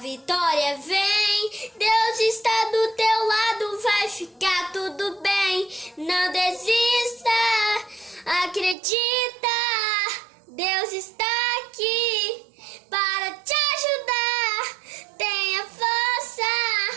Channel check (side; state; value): left; drops out; at 8.8 s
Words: vem. Deus está do teu lado, vai ficar tudo bem. Não desista, acredita. Deus está aqui para te ajudar. Tenha força,